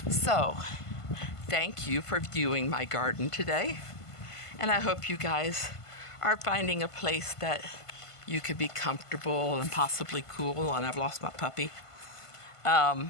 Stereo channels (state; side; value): late; right; 1.5 ms